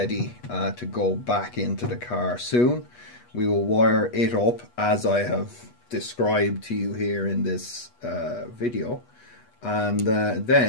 to go back into the car soon. We will wire it up as I have described to you here in this video, and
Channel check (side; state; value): right; late; 8.3 ms